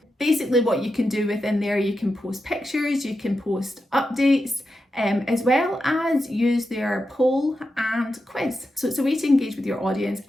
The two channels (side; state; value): both; normal; correlation 0.88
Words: Basically what you can do within there, you can post pictures, you can post updates, as well as use their poll and quiz. So it's a way to engage with your audience,